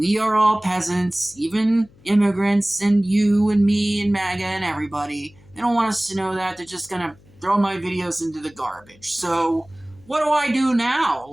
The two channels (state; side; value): noise; left; hum, 28 dB below the sound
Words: are all peasants, even immigrants and you and me and MAGA and everybody. They don't want us to know that. They're just going to throw my videos into the garbage. So what do I do now?